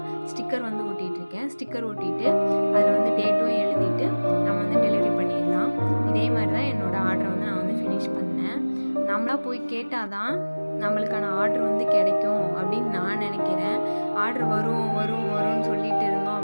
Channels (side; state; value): both; inverted; correlation -1.00